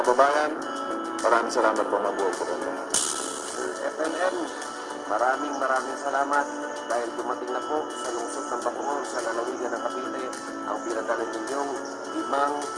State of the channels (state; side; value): identical; both; correlation 1.00